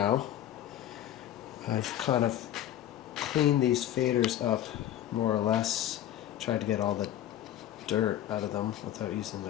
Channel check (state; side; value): quieter; right; 12.0 dB